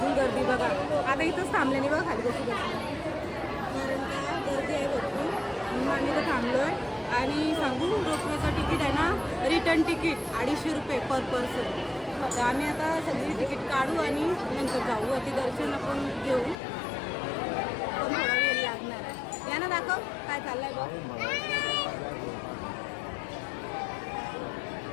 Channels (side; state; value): right; drops out; at 16.6 s